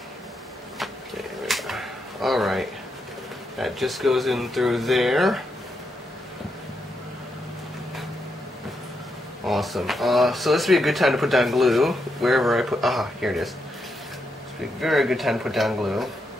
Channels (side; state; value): both; normal; correlation 0.82